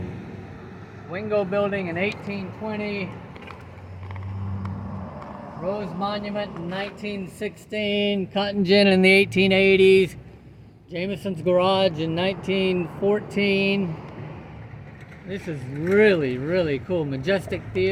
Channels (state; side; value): identical; both; correlation 1.00